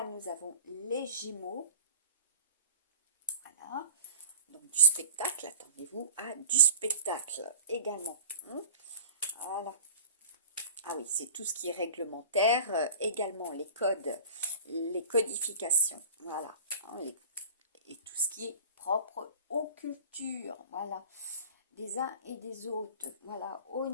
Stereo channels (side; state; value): both; inverted; correlation -0.39